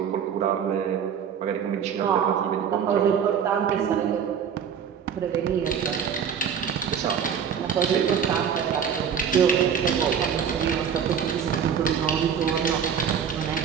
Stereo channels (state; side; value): quieter; left; 7.6 dB